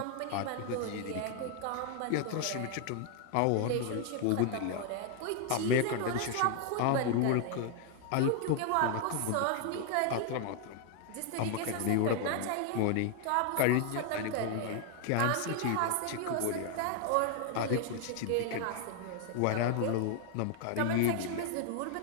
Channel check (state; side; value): different; both; correlation 0.00